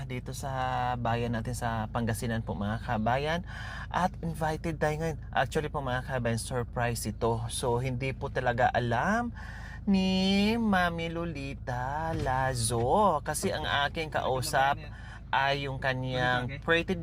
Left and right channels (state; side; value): identical; both; correlation 1.00